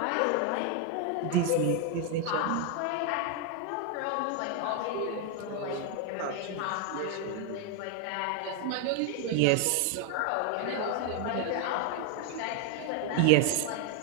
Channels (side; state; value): both; different; correlation 0.01